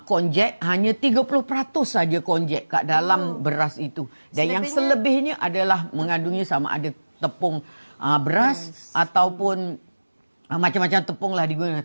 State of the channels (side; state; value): both; inverted; correlation -1.00